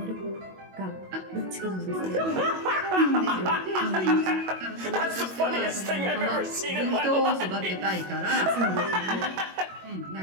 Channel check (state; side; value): late; left; 22 ms